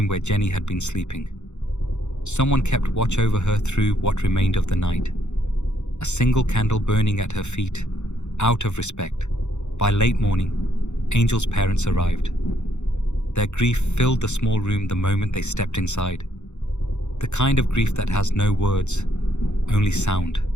where Jenny had been sleeping. Someone kept watch over her through what remained of the night, a single candle burning at her feet, out of respect. By late morning, Angel's parents arrived. Their grief filled the small room the moment they stepped inside. The kind of grief that has no words, only sound.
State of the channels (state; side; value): late; right; 0.83 ms